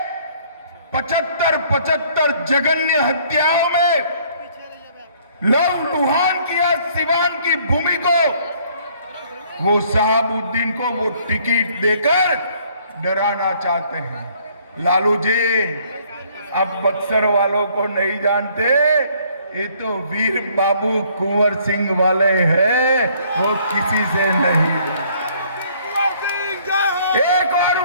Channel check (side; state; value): both; inverted; correlation -0.61